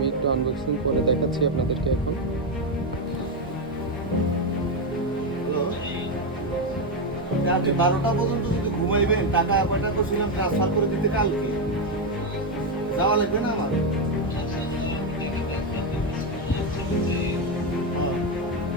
একটু আনবক্সিং করে দেখাচ্ছি আপনাদেরকে এখন। আপনি 12টা পর্যন্ত যদি ঘুমাইবেন, টাকা কয়টা করছিলাম ট্রান্সফার করে দিতে কালকে যাওয়া লাগবে না আমার?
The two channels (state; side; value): normal; both; correlation 0.07